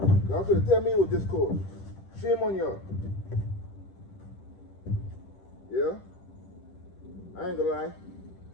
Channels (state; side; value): late; right; 10 ms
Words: Y'all could have tell me it was this cold. Shame on y'all. Yeah? I ain't gonna lie.